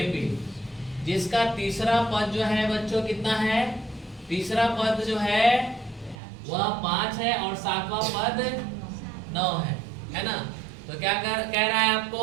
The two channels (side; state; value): left; drops out; at 6.2 s